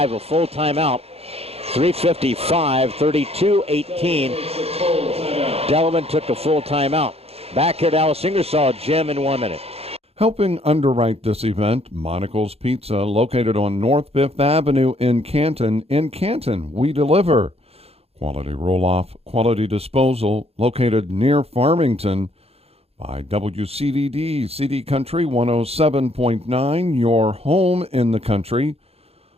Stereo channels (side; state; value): left; late; 0.29 ms